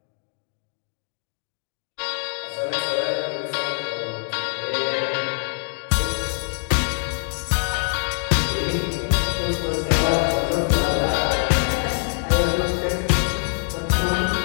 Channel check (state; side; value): silent; right; digital silence